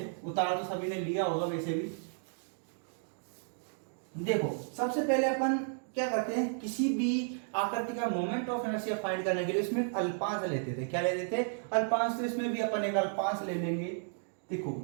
उतार तो सभी ने लिया होगा वैसे भी। देखो सबसे पहले अपन क्या करते हैं, किसी भी आकृति का मोमेंट ऑफ इनर्शिया फाइंड करने के लिए उसमें एक अल्पांश लेते थे। क्या लेते थे? अल्पांश। तो इसमें भी अपन एक अल्पांश ले लेंगे। देखो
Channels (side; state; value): left; silent; digital silence